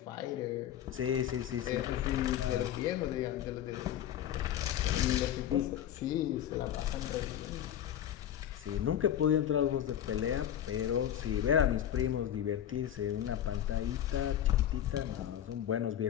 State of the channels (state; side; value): quieter; right; 10.7 dB